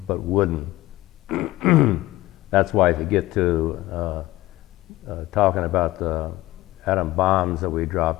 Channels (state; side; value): quieter; right; 17.6 dB